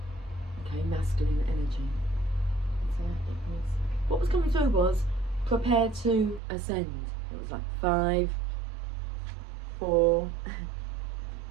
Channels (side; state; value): left; drops out; at 6.4 s